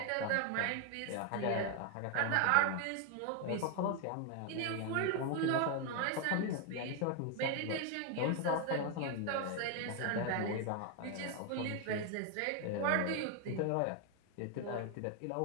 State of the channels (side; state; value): both; different; correlation 0.00